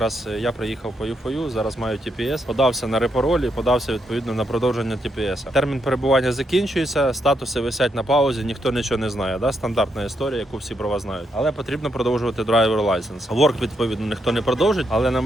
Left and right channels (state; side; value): normal; both; correlation 0.79